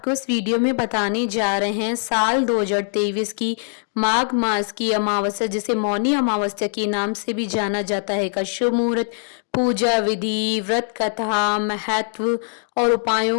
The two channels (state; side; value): silent; right; 64 dB below the other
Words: इस वीडियो में बताने जा रहे हैं साल 2023 की माघ मास की अमावस्या, जिसे मौनी अमावस्या के नाम से भी जाना जाता है, का शुभ मुहूर्त, पूजा विधि, व्रत कथा, महत्व और